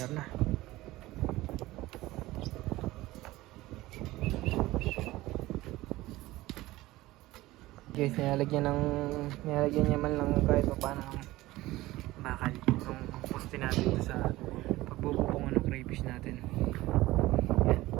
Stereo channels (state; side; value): quieter; left; 17.9 dB